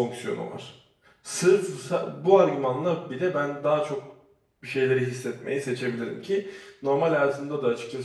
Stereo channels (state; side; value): identical; both; correlation 1.00